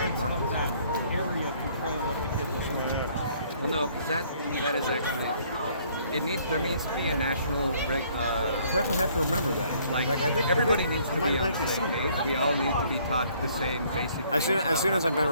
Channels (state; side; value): inverted; both; correlation -0.62